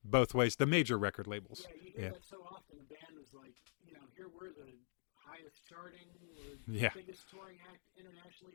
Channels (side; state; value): right; silent; digital silence